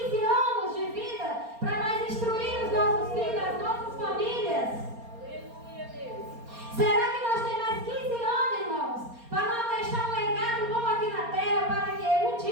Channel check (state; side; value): late; left; 4.3 ms